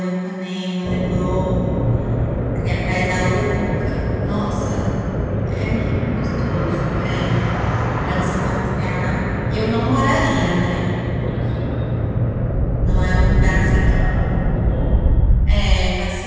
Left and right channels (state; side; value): identical; both; correlation 1.00